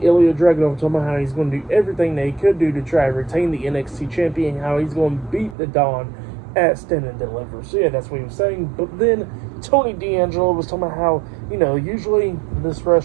Ilya Dragunov talking about how he's going to do everything that he could do to try to retain the NXT champion, how he's going to beat the Don at Stand and Deliver. So yeah, that's what he was saying. But then Tony D'Angelo was talking about how, you know, usually this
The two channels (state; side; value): drops out; left; at 5.6 s